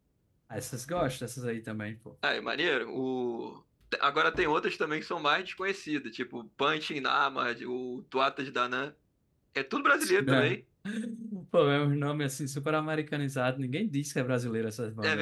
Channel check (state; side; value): identical; both; correlation 1.00